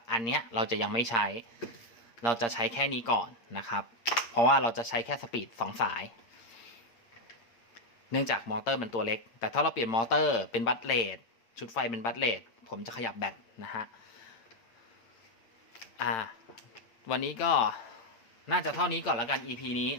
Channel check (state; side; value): late; right; 8.7 ms